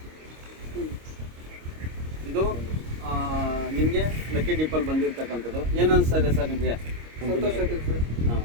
ಇದು ನಿಮಗೆ ಲಕ್ಕಿ ಡಿಪ್ಪಲ್ಲಿ ಬಂದಿರ್ತಕ್ಕಂಥದ್ದು. ಏನು ಅನಿಸ್ತಾ ಇದೆ ಸರ್ ನಿಮಗೆ? ಸಂತೋಷ ಆಗಿದೆ ಸರ್. ಹಾಂ,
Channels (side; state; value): left; late; 26 ms